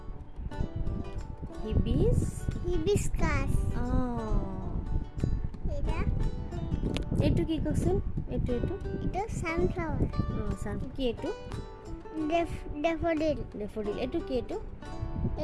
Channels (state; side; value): identical; both; correlation 1.00